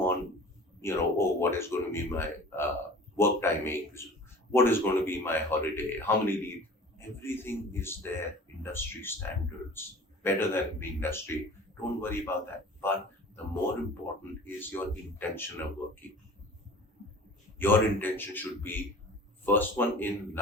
what is going to be my work timings, what is going to be my holiday, how many leave. Everything is there, industry standards, better than the industry. Don't worry about that. But the more important is your intention of working. Your intention should be first one in,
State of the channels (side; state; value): both; normal; correlation 0.43